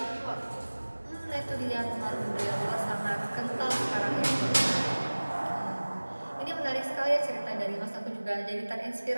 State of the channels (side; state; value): both; inverted; correlation -1.00